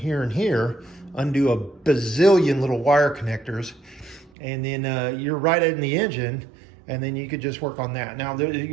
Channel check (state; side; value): drops out; left; at 4.3 s